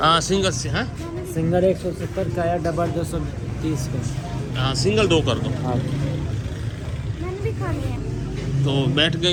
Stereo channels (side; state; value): both; identical; correlation 1.00